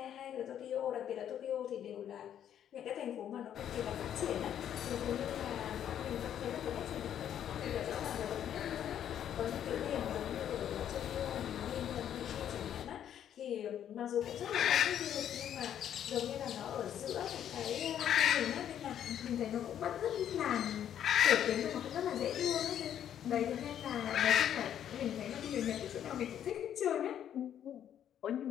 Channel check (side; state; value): right; quieter; 10.0 dB